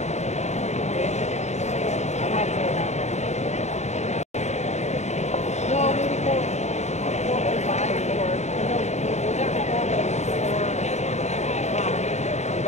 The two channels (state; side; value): late; right; 0.33 ms